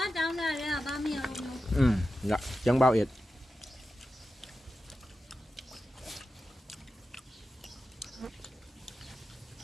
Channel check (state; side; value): normal; both; correlation 0.92